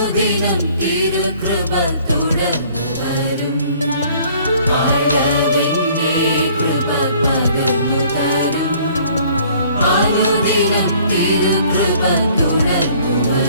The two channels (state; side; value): inverted; both; correlation -0.56